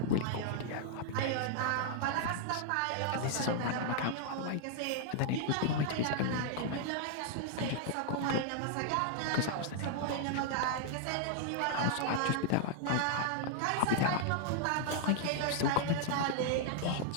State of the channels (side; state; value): both; different; correlation -0.01